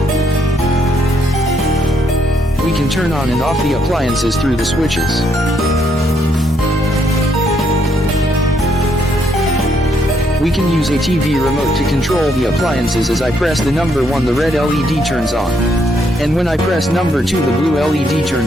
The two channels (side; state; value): both; normal; correlation 0.74